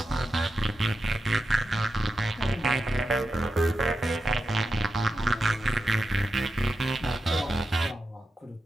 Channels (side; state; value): both; normal; correlation 0.89